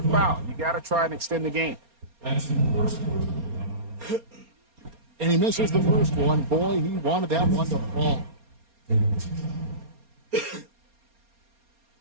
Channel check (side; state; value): left; late; 4.3 ms